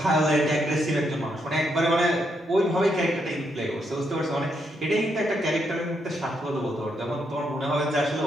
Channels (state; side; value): normal; both; correlation 0.78